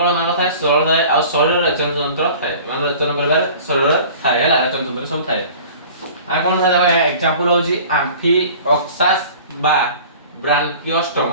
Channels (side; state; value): both; inverted; correlation -0.44